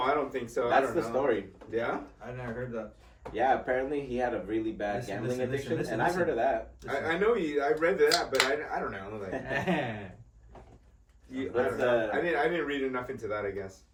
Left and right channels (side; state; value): both; identical; correlation 1.00